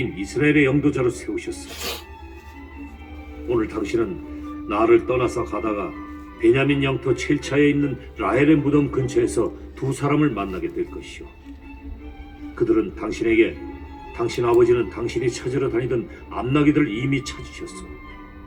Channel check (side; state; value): both; identical; correlation 1.00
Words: 이스라엘의 영도자로 세우셨어. 오늘 당신은 나를 떠나서 가다가 베냐민 영토 첼차에 있는 라헬의 무덤 근처에서 두 사람을 만나게 될 것이오. 그들은 당신에게 당신 아버지는 당신이 찾으러 다니던 암나귀들을 이미 찾으셨어.